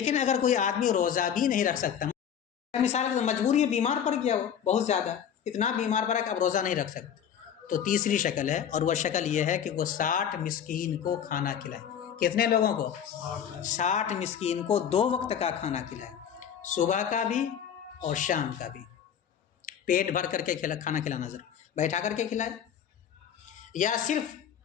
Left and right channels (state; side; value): quieter; right; 8.7 dB